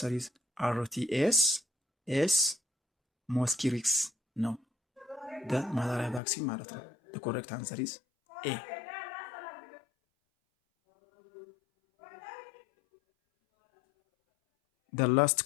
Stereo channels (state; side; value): drops out; right; at 6.2 s